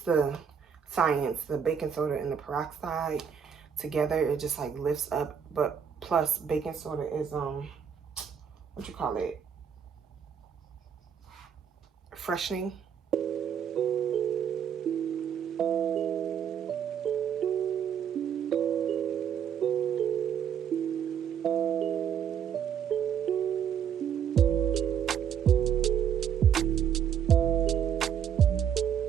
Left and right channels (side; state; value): left; quieter; 8.2 dB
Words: the science, the baking soda and the peroxide together, it just like lifts up. But plus baking soda is what you call it, freshening.